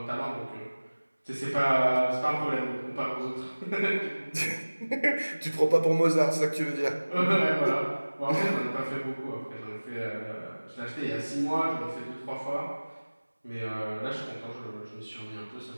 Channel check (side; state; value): both; inverted; correlation -1.00